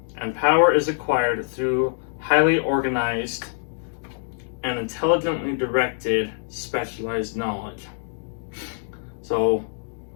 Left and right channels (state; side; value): silent; right; digital silence